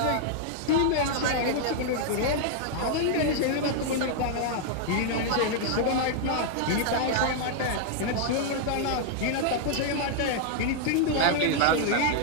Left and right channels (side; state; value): both; different; correlation -0.01